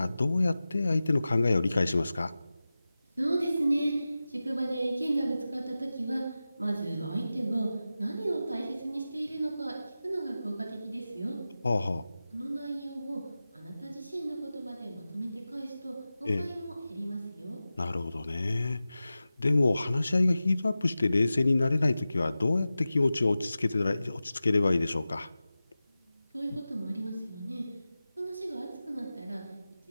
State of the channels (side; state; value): both; inverted; correlation -0.95